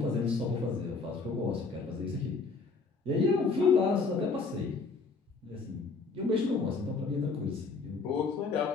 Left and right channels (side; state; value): right; quieter; 4.3 dB